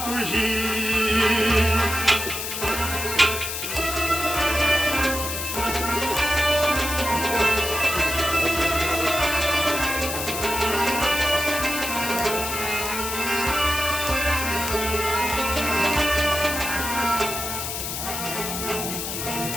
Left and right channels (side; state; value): left; noise; hiss, 4 dB below the sound